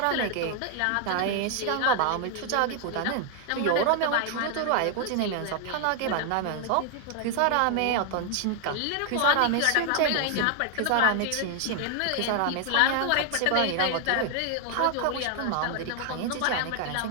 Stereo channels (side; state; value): both; different; correlation 0.00